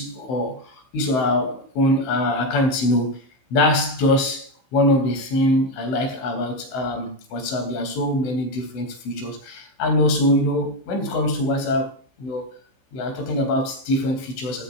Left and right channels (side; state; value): right; late; 16 ms